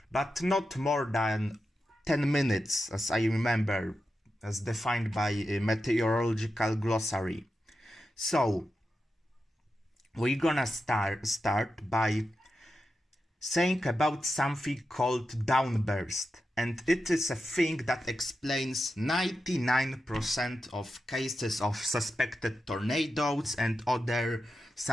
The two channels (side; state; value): both; normal; correlation 0.90